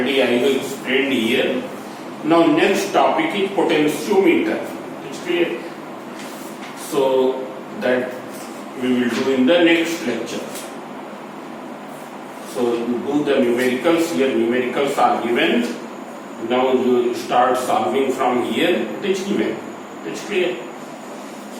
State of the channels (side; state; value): both; identical; correlation 1.00